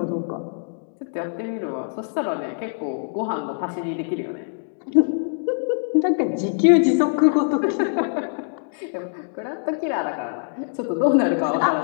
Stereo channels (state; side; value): silent; right; digital silence